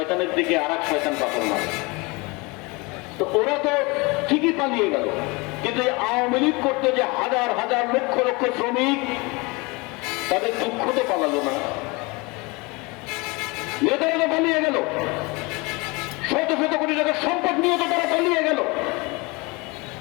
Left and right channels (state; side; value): quieter; right; 26.2 dB